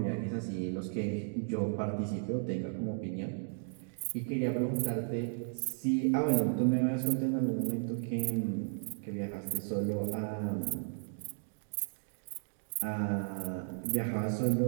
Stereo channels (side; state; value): left; silent; digital silence